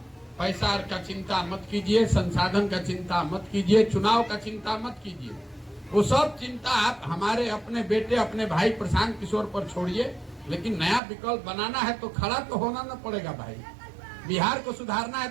पैसा का चिंता मत कीजिए, संसाधन का चिंता मत कीजिए, चुनाव का चिंता मत कीजिए। वो सब चिंता आप हमारे अपने बेटे, अपने भाई प्रशांत किशोर पर छोड़िए। लेकिन नया विकल्प बनाना है तो खड़ा तो होना न पड़ेगा भाई। बिहार को सुधारना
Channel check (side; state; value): left; drops out; at 11.0 s